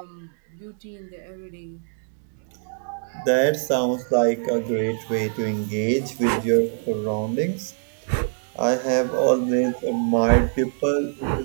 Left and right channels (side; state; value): left; silent; digital silence